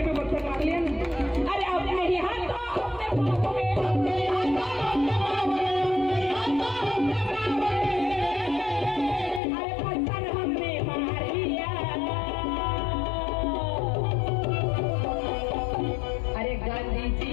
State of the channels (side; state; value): right; drops out; at 9.4 s